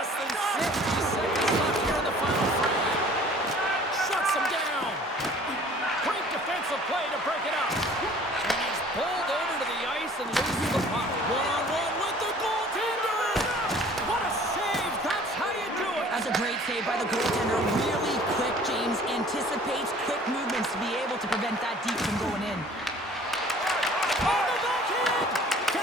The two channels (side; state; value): both; normal; correlation 0.51